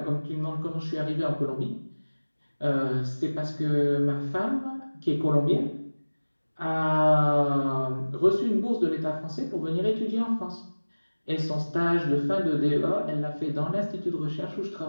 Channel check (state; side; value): inverted; both; correlation -1.00